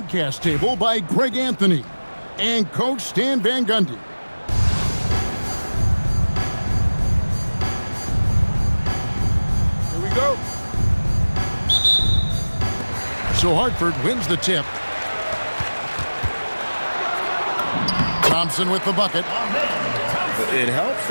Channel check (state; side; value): inverted; both; correlation -1.00